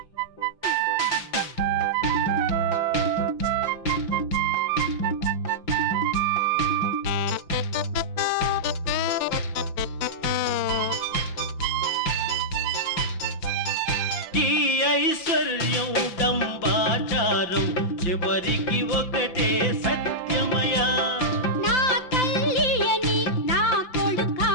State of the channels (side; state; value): right; late; 5.8 ms